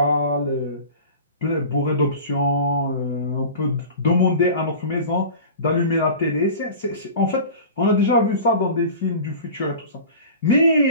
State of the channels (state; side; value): inverted; both; correlation -0.37